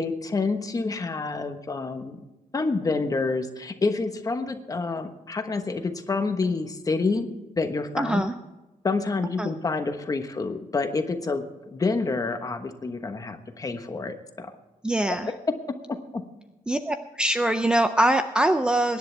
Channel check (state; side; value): normal; both; correlation 0.80